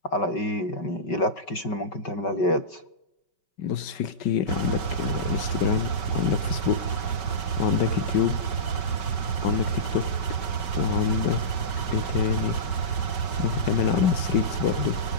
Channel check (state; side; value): late; right; 5.3 ms